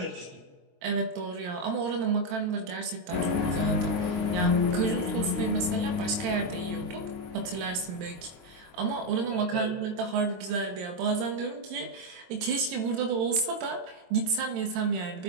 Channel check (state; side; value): late; left; 22 ms